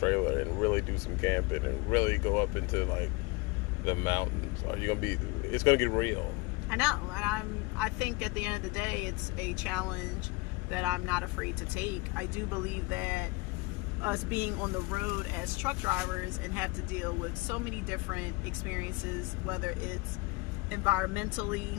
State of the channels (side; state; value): right; quieter; 24.7 dB